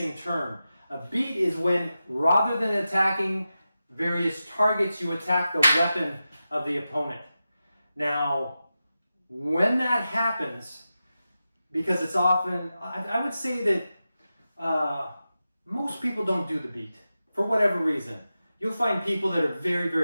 term. A beat is when, rather than attacking various targets, you attack the weapon of the opponent. Now, when that happens, because it's often, I would say that most people don't do the beat for whatever reason. You'll find people that are very,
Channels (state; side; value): inverted; both; correlation -0.92